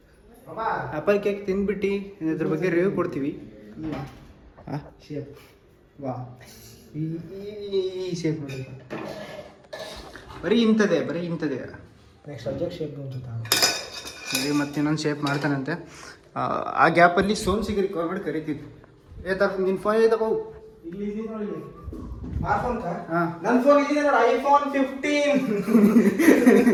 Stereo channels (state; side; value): identical; both; correlation 1.00